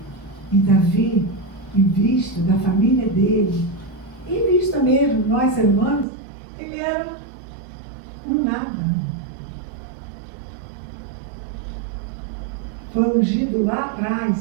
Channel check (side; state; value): left; drops out; at 6.1 s